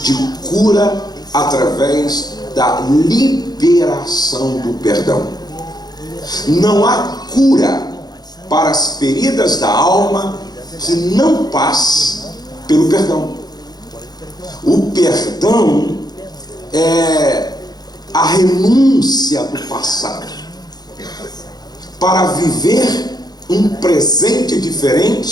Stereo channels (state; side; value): late; right; 0.19 ms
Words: de cura através da liberação do perdão. Não há cura para as feridas da alma que não passe pelo perdão. O perdão é a renúncia do passado para viver um presente